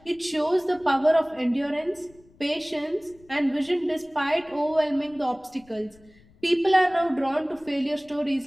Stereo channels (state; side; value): noise; left; rumble, 28 dB below the sound